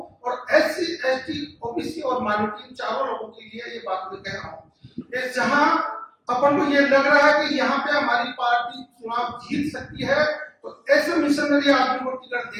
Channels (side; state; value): both; identical; correlation 1.00